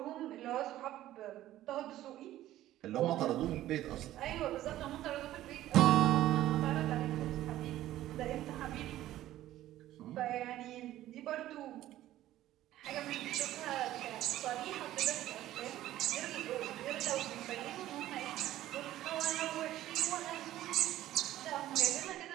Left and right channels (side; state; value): left; quieter; 14.1 dB